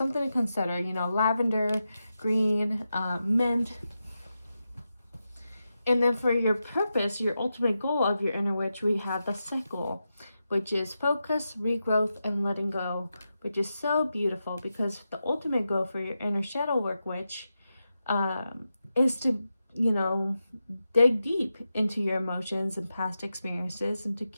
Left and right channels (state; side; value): inverted; both; correlation -0.89